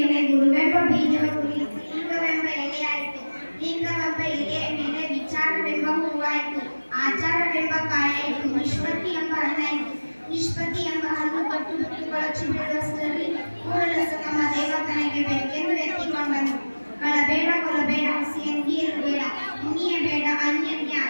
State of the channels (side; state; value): both; inverted; correlation -1.00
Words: ಗುರುವೆಂಬ ಬೀಜವ ಕುರಿತು ಲಿಂಗವೆಂಬ ಎಲೆಯಾಯಿತು. ಲಿಂಗವೆಂಬ ಎಲೆಯ ಮೇಲೆ ವಿಚಾರವೆಂಬ ಹೂವಾಯಿತು. ಆಚಾರವೆಂಬ ಕಾಯಾಯಿತು. ನಿಷ್ಪತ್ತಿ ಎಂಬ ಹಣ್ಣಾಯಿತು. ನಿಷ್ಪತ್ತಿ ಎಂಬ ಹಣ್ಣು ಕಟ್ಟು ಬಿಟ್ಟು ಬೀಳುವಷ್ಟರಲ್ಲಿ ಕೂಡಲಸ ನಮ್ಮ ದೇವತನಿಗೆ ಬೇಕೆಂದು ಎತ್ತಿಕೊಂಡನು. ಕಳಬೇಡ, ಕೊಲಬೇಡ, ಹಸಿಯಂಗಿಯರು ಬೇಡ, ಮುನಿಯಬೇಡ, ಅನ್ಯನಿಗೆ